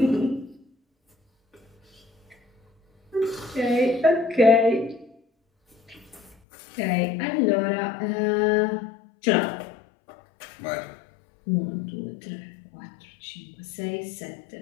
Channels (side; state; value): right; drops out; at 6.4 s